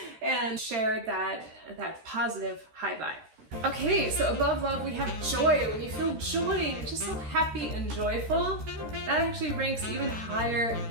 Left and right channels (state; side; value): late; left; 13 ms